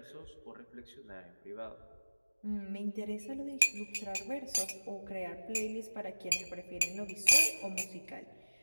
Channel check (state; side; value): inverted; both; correlation -1.00